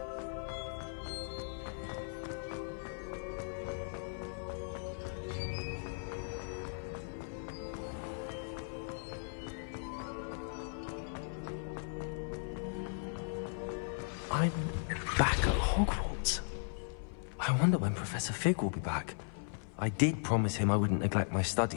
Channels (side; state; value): right; silent; 53 dB below the other